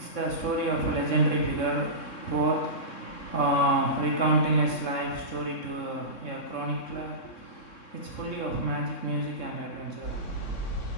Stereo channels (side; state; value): right; late; 3.6 ms